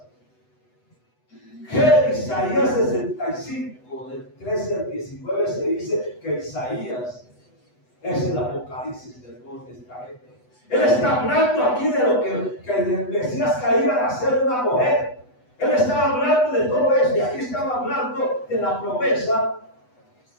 Que Isaías 65, del 13 al 19, se dice que Isaías es el Apocalipsis del Nuevo Testamento. Él está hablando aquí de lo que el Mesías que iba a ser una mujer. Él estaba hablando de todo eso, y aquí estaba hablando de la promesa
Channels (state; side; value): late; right; 8.0 ms